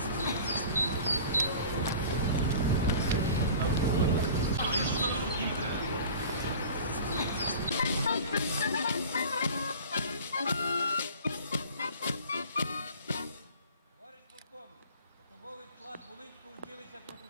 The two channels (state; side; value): inverted; both; correlation -0.41